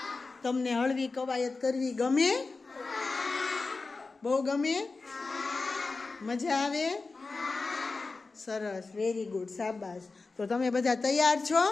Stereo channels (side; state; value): right; quieter; 3.9 dB